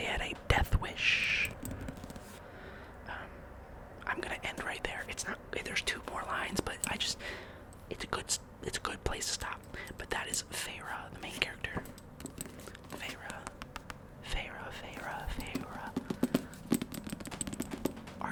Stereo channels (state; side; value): identical; both; correlation 1.00